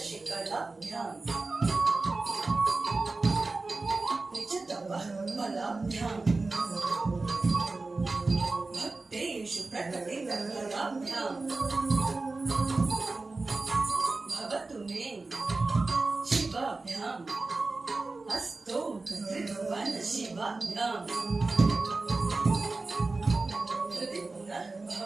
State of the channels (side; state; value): left; quieter; 3.5 dB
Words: निजतपः फलाभ्यां भक्तेषु प्रकटितफलाभ्यां भवतु मे शिवाभ्याम् अस्तु त्रिभुवन शिवाभ्यां हृदि